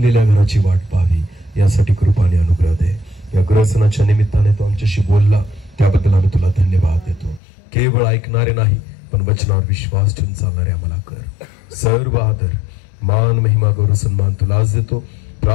घराची वाट पाहावी, यासाठी कृपाने अनुग्रह दे. या ग्रहसणाच्या निमित्ताने तो आमच्याशी बोलला, त्याबद्दल आम्ही तुला धन्यवाद देतो. केवळ ऐकणारे नाही, पण वचनावर विश्वास ठेवून चालणारे आम्हाला कर. सर्व आदर, मान, महिमा, गौरव, सन्मान तुलाच देतो.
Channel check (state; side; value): drops out; right; at 7.4 s